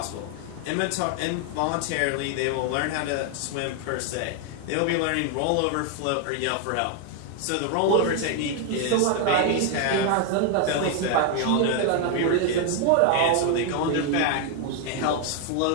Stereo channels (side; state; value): both; different; correlation 0.01